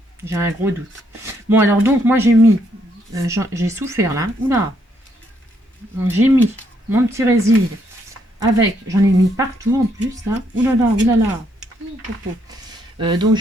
J'ai un gros doute. Bon, alors donc, moi, j'ai mis... j'ai souffert, là. Oula. Donc, j'ai mis mon petit résil avec... J'en ai mis partout, en plus, là. Oulala. Donc,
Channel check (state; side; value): normal; both; correlation 0.73